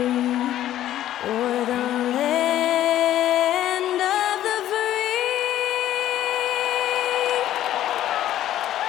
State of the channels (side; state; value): right; quieter; 12.6 dB